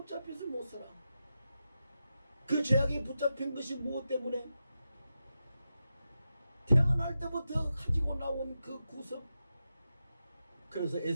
못 살아. 그 죄악에 붙잡힌 것이 무엇 때문에? 태어날 때부터 가지고 나온 그 구습. 그래서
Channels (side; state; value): both; inverted; correlation -0.90